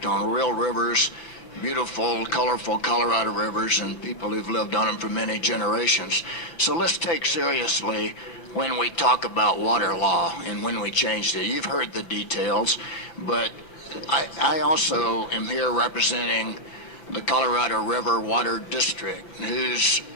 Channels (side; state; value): right; late; 5.8 ms